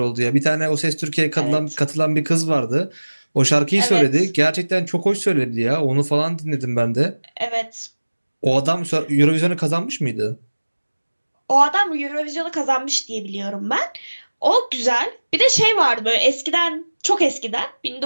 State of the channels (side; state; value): both; inverted; correlation -1.00